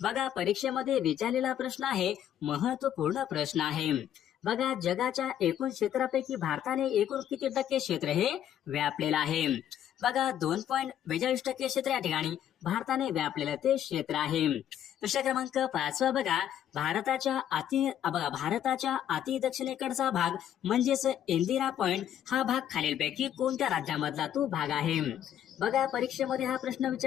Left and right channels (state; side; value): quieter; right; 10.5 dB